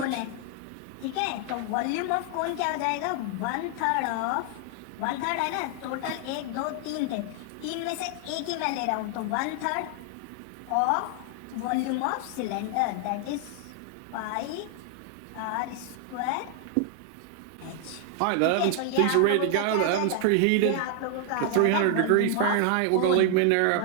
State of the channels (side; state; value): both; different; correlation 0.00